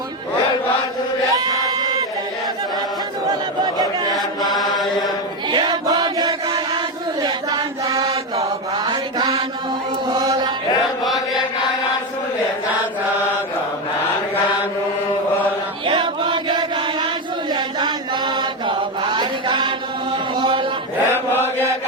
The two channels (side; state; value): both; normal; correlation 0.13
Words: भारी खानु होला हे बगेका आँसुले जान्छ भार खानु होला हे बगेका आँसुले जान्छ भार खानु होला हे